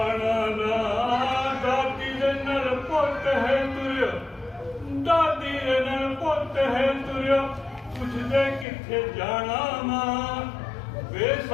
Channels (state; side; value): drops out; right; at 8.7 s